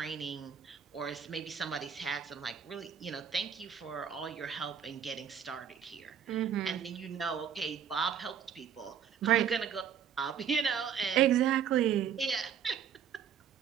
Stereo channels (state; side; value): quieter; left; 8.1 dB